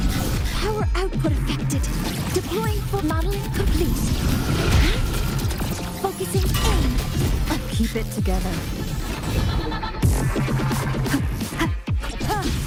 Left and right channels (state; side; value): identical; both; correlation 1.00